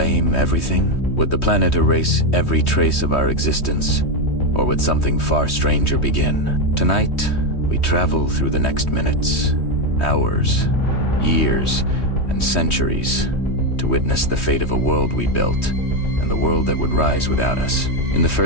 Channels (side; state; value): right; late; 3.2 ms